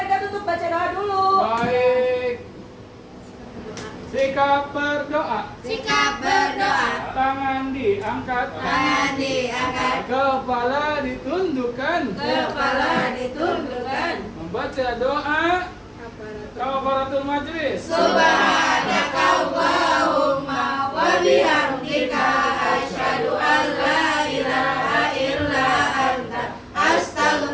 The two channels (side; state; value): both; identical; correlation 1.00